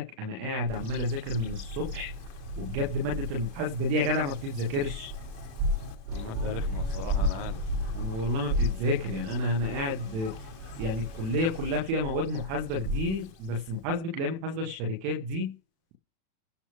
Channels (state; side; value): late; left; 36 ms